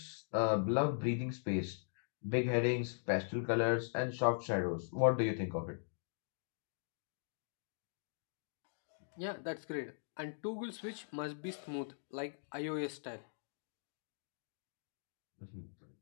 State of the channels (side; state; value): right; silent; digital silence